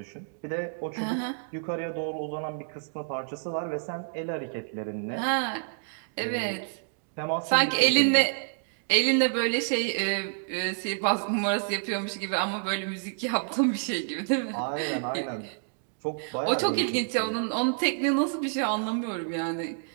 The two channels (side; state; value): left; silent; digital silence